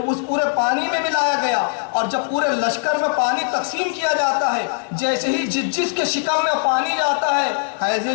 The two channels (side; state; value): right; silent; digital silence